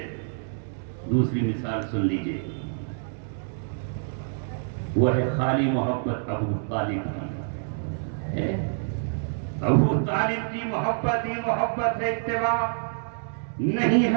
دوسری مثال سن لیجئے، وہ ہے خالی محبت ابو طالب کی ہے۔ ابو طالب کی محبت ہی محبت ہے، اتباع نہیں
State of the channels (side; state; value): left; silent; digital silence